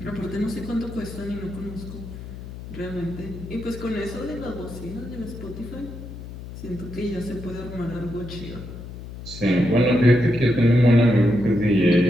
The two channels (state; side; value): noise; left; hum, 12 dB below the sound